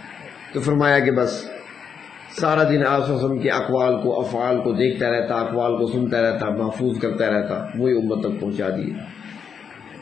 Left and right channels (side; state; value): right; quieter; 6.9 dB